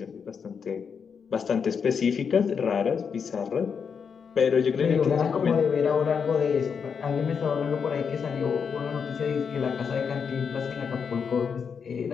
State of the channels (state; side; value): quieter; right; 6.4 dB